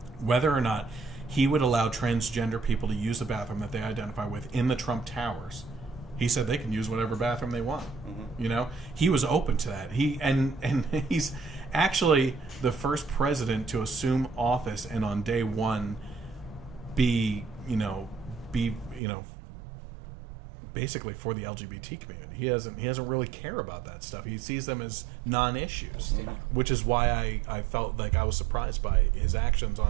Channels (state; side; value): drops out; left; at 19.0 s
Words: whether or not he would allow transgender people to use the bathroom that they identify with in the Trump Towers. He said they can use whatever bathroom they want. He was open to that. He's actually the first president to assume office and on day one be basically for the LGBT community. He doesn't really care about that stuff. He sees them as non-issues, which is why I felt like I was surprised by his actions